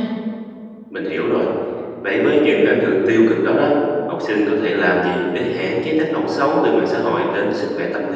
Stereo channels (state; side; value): identical; both; correlation 1.00